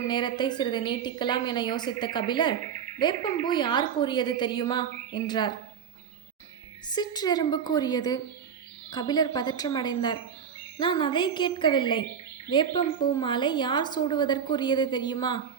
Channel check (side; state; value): left; quieter; 7.7 dB